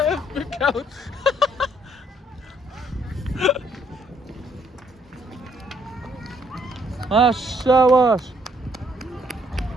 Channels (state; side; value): normal; both; correlation 0.68